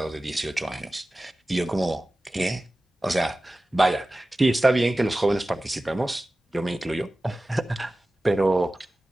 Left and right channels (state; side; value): normal; both; correlation 0.96